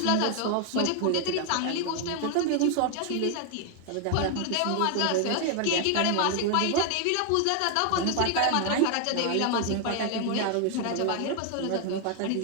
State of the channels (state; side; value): different; both; correlation 0.00